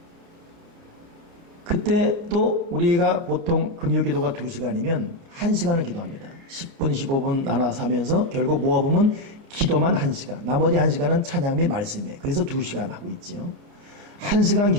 그때 또 우리가 보통 금요 기도가 2시간이면 1시간을 기도합니다. 10분, 15분 나눠서 하면서 결국 모아보면 기도만 1시간, 나머지 1시간은 찬양 및 말씀이에요. 그래서 2시간 하고 있죠. 1시간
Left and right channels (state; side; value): late; left; 30 ms